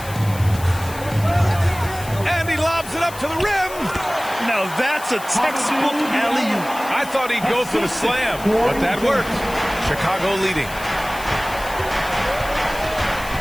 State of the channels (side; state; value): left; noise; hiss, 15 dB below the sound